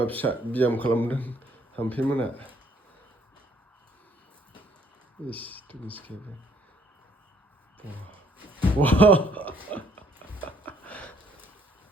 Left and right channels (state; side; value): normal; both; correlation 0.65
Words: फिसा बियाम खालामदों थाम्फै मोना इस मिसकेबो